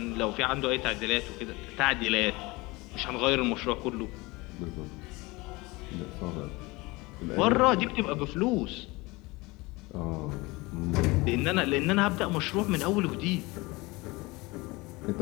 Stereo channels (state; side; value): quieter; right; 23.3 dB